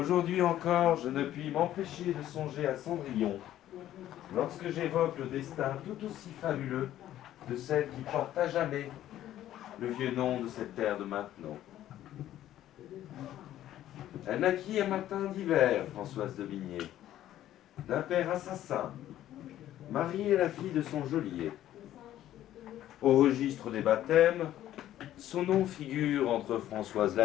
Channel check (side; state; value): right; quieter; 12.7 dB